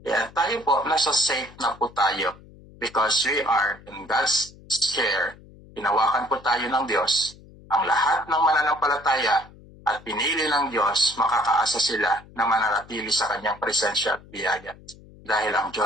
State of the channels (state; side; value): noise; left; hum, 22 dB below the sound